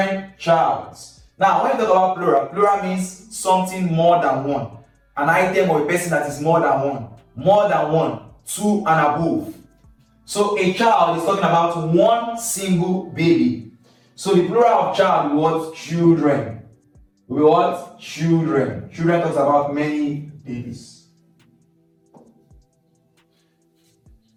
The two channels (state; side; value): identical; both; correlation 1.00